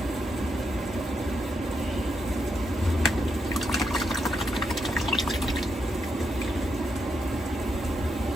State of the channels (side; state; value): both; normal; correlation 0.82